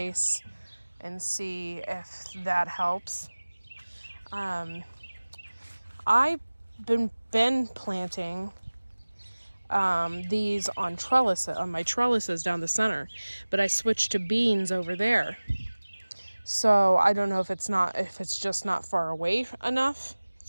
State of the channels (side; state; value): both; inverted; correlation -1.00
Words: and see if that helps. I've been planting these on my trellises down the center, but I switched to beans over there. So I don't know if it's just not far away enough